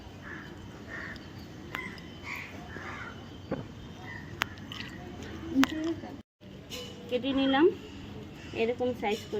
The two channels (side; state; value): both; identical; correlation 1.00